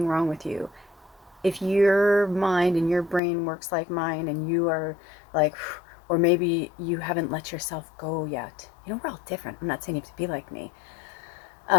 wrong with you. If your mind and your brain works like mine, and you are like, or maybe you haven't let yourself go yet. We're all different. I'm not saying you have to be like me.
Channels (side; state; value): right; drops out; at 3.2 s